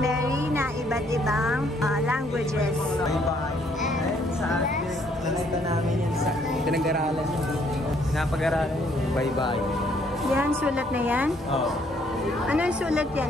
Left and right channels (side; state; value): both; normal; correlation 0.67